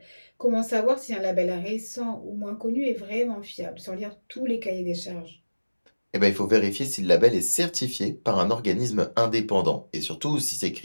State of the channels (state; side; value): inverted; both; correlation -1.00